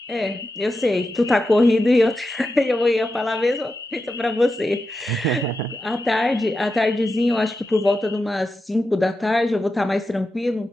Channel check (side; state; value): both; normal; correlation 0.89